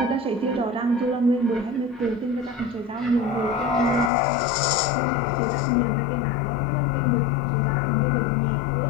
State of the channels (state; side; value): drops out; right; at 4.1 s